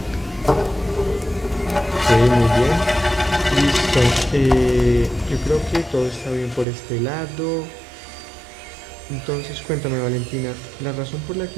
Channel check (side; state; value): left; drops out; at 6.7 s